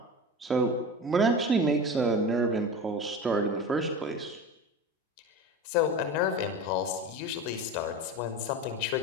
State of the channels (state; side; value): normal; both; correlation 0.30